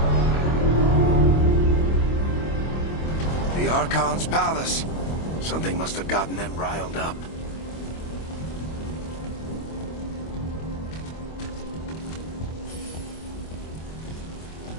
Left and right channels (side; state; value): right; late; 25 ms